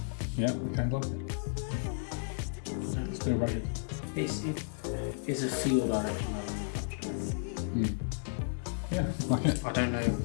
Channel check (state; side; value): silent; right; 56 dB below the other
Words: Yeah, okay, like it. Let's do it rugged. It's a feel direction rather than a punch direction. Yeah, like it. I don't know.